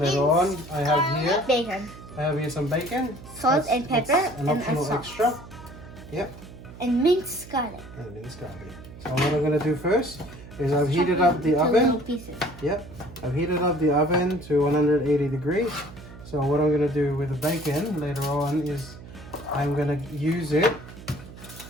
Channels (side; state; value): right; noise; hum, 16 dB below the sound